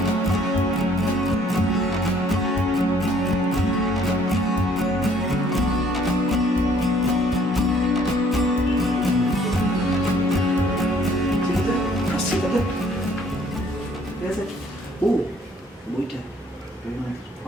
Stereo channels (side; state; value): both; normal; correlation 0.61